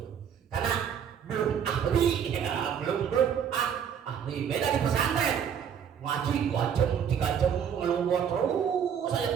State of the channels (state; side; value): quieter; left; 8.1 dB